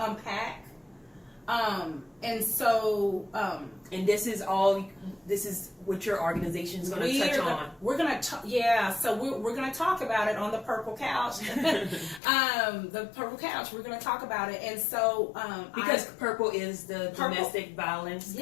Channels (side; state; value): right; drops out; at 12.2 s